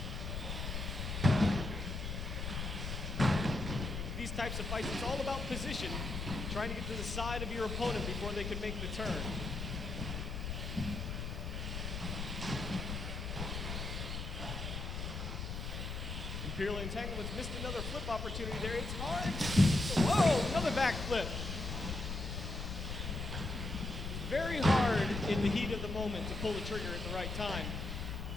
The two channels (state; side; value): noise; left; rumble, 4 dB below the sound